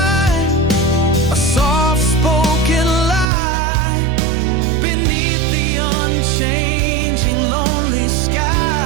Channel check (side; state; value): left; drops out; at 3.2 s